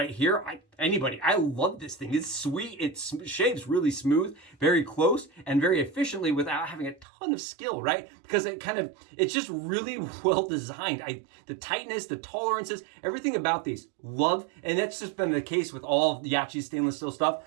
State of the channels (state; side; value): drops out; left; at 7.1 s